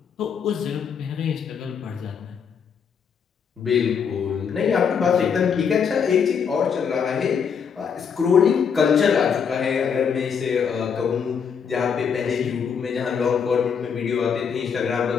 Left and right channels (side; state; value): right; quieter; 6.8 dB